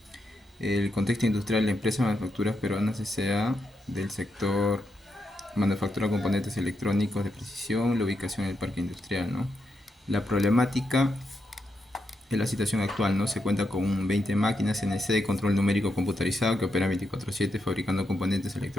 El contexto industrial, la empresa Manufacturas Peruanas S.A. del sector manufactura de componentes electrónicos de precisión, la ubicación en el parque industrial, ¿no? La problemática es la situación actual, ¿no? Se cuenta con 20 máquinas CNC de control numérico computarizado que operan 24/7 fabricando componentes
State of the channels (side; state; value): both; normal; correlation 0.83